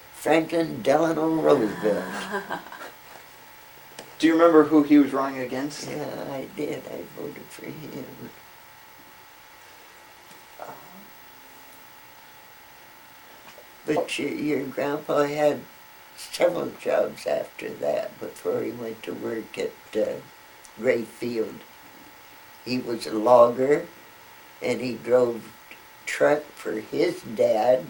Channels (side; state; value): both; identical; correlation 1.00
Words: Franklin Delano Roosevelt. Do you remember who he was running against? Yeah, I did. I voted for him. But your grandpa had several jobs after that before he went to work at Gray Field. He was a logger, and he drove truck for his dad.